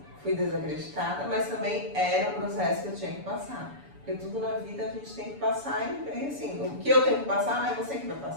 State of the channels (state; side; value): late; left; 7.0 ms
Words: fui desacreditada, mas também era um processo que eu tinha que passar. Porque tudo na vida a gente tem que passar e assim, o que eu tenho que passar não é você que vai